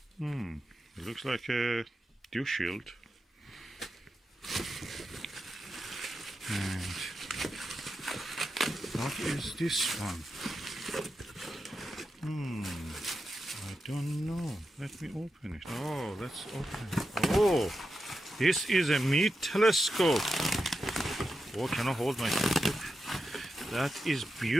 It looks like a dew shield. And what is this one? I don't know. Let me open it. Oh, let's open it. Oh, this is a Meade telescope. Oh, can I hold my telescope? That is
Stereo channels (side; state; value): both; normal; correlation 0.89